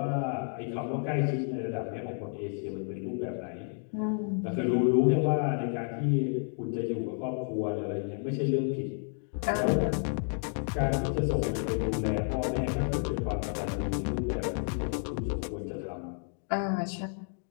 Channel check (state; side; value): silent; right; 57 dB below the other